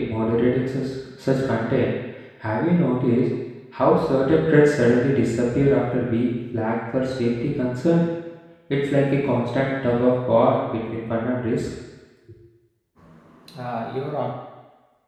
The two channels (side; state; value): both; identical; correlation 1.00